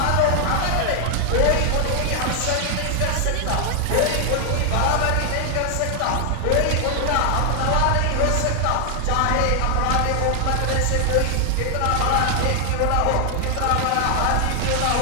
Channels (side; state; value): both; different; correlation 0.00